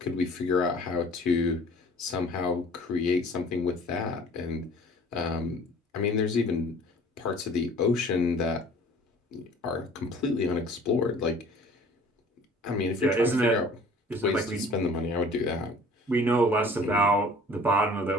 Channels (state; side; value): normal; both; correlation 0.49